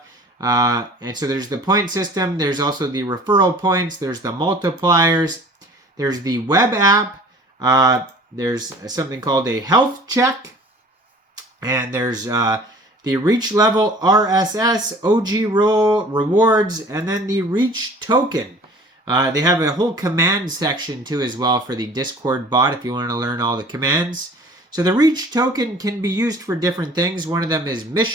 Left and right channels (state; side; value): normal; both; correlation 0.47